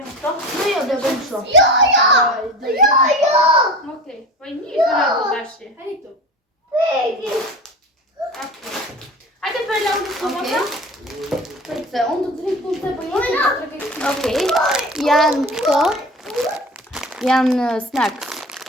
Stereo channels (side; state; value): both; normal; correlation 0.34